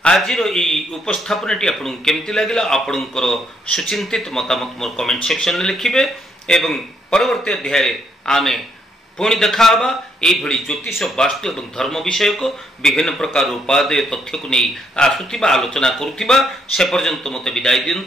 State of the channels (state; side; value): normal; both; correlation 0.73